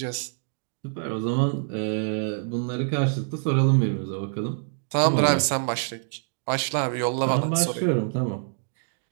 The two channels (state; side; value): silent; left; digital silence